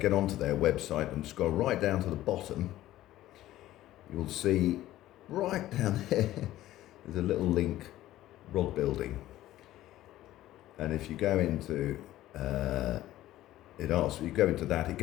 onto their website and scroll right down to the bottom, you'll see right down there there's a little link, rod building, and if you go into it asks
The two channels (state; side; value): quieter; right; 14.6 dB